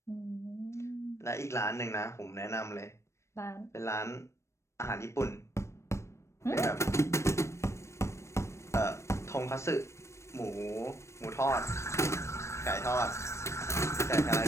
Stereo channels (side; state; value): right; late; 0.13 ms